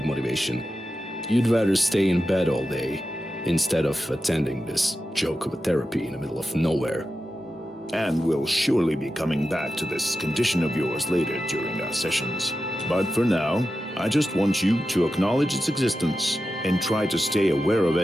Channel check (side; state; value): both; normal; correlation 0.91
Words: motivation. You'd rather stay in bed all day instead of attending this joke of a therapy in the middle of nowhere. And we'll surely be coming back to this condition of yours later during our sessions. But for now, I just want you to acknowledge its existence and try to stay aware of